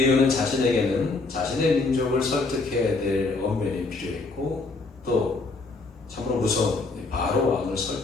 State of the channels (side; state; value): right; quieter; 3.7 dB